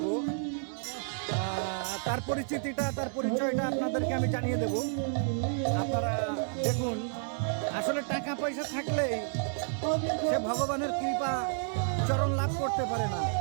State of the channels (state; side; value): silent; left; digital silence